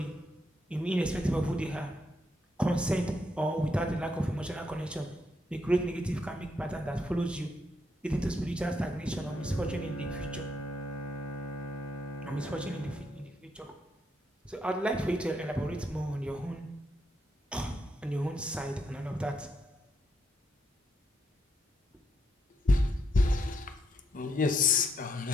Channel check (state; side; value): normal; both; correlation 0.77